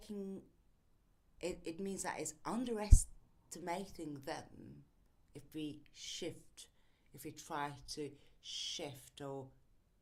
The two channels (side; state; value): both; identical; correlation 1.00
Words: it means that it's underestimating them if we shift, if we try to shift, or